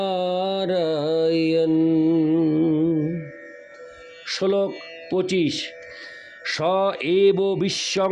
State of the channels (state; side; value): identical; both; correlation 1.00